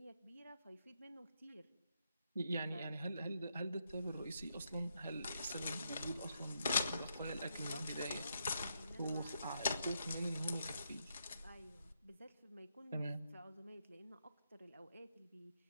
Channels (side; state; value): both; inverted; correlation -0.80